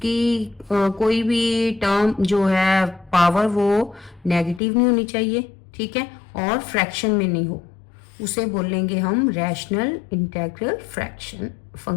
कोई भी टर्म जो है पावर वो नेगेटिव नहीं होनी चाहिए। ठीक है, और फ्रैक्शन में नहीं हो, उसे बोलेंगे हम rational integral fraction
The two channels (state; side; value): drops out; right; at 4.6 s